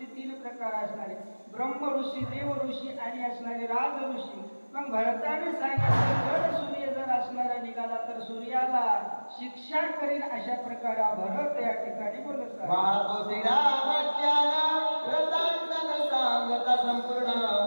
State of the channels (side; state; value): both; inverted; correlation -1.00